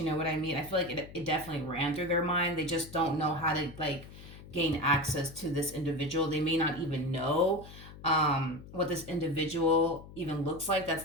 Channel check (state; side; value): noise; left; hum, 16 dB below the sound